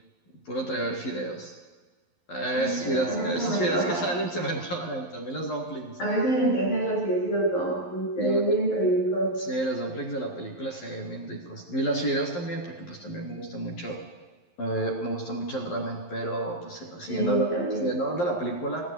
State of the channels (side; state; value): right; late; 11 ms